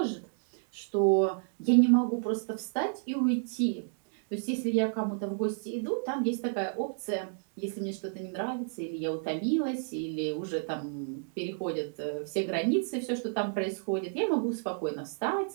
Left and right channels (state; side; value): silent; left; digital silence